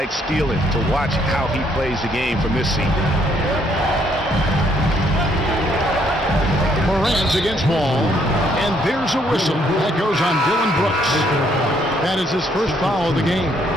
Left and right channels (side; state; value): both; normal; correlation 0.69